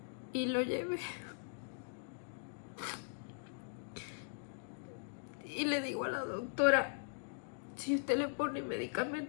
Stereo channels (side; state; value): right; silent; digital silence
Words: Y lo llevé. Y le digo a la doctora, si usted le pone